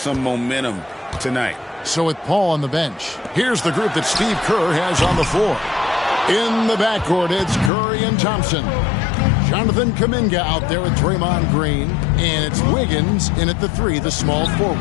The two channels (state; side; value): drops out; right; at 7.7 s